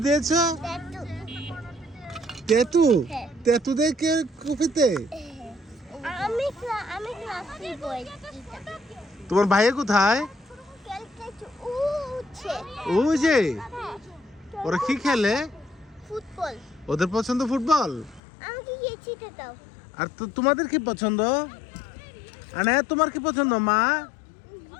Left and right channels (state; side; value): drops out; right; at 18.2 s